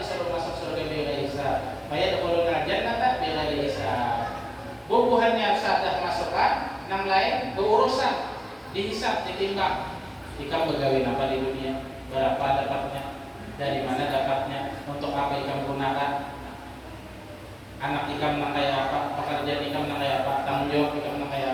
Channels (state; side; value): identical; both; correlation 1.00